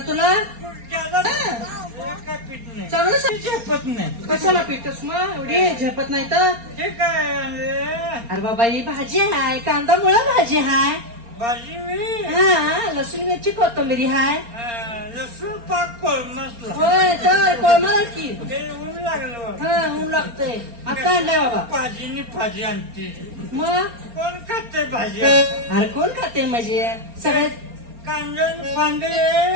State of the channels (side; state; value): left; late; 4.3 ms